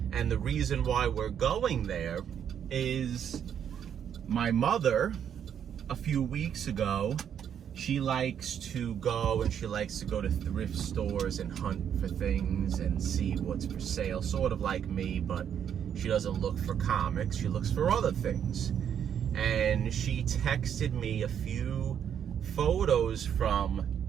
And the reason why we're going there is my mother, a few weeks ago, she likes to go to thrift stores and hunt for things and see what's for sale, sort of like me, but she doesn't look for comics, she looks for other things. And she texted me a few photos from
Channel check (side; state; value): left; quieter; 8.7 dB